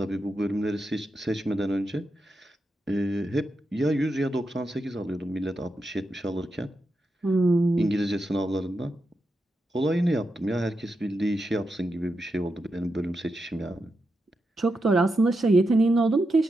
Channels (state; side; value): normal; both; correlation 0.87